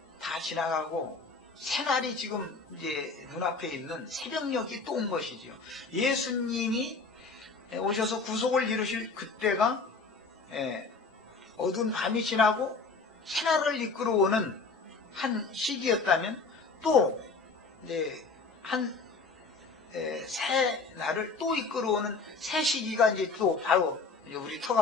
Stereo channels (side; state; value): right; quieter; 4.2 dB